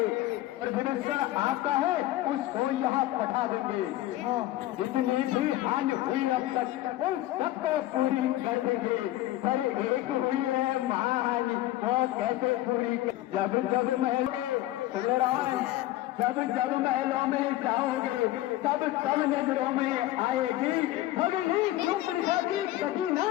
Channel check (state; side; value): quieter; right; 15.6 dB